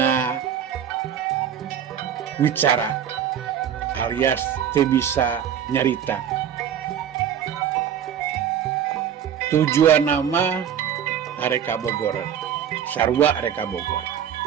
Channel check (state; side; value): quieter; left; 9.2 dB